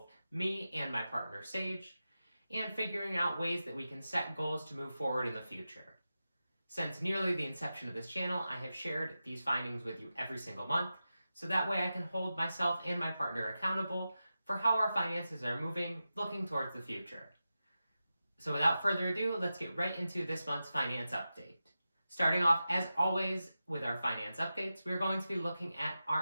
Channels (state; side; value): inverted; both; correlation -0.92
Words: me and my partner Sage, and figuring out ways that we can set goals to move forward in the future. Since nearly the inception of this channel, I have shared these findings with you every single month, so that way I can hold myself and my partner accountable for how our finances are moving, looking towards the future. So without further ado, let's get right into this month's finance update. Starting off, as always, with our finance updates, we're going to be looking at